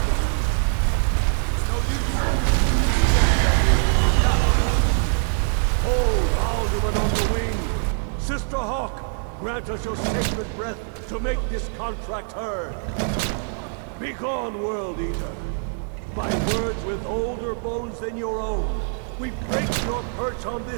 It's no use. Hold Alduin on the wing! Sister Hawk, grant us your sacred breath to make this contract heard. Begone, World Eater. By words with older bones than your own, we break your perch on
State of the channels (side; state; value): left; silent; 61 dB below the other